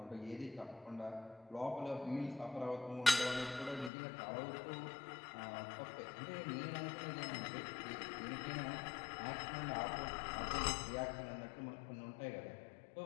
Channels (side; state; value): right; drops out; at 3.9 s